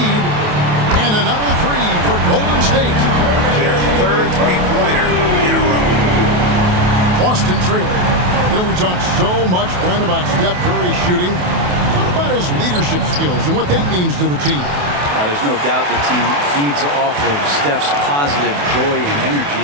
And another 3 for Golden State. Their third three-pointer in a row. Boston trailing. You know, we talk so much, Brent, about Steph Curry shooting. What about his leadership skills and what that means to the team? There's no doubt the team feeds off of Steph's positive joy and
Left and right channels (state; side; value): late; left; 28 ms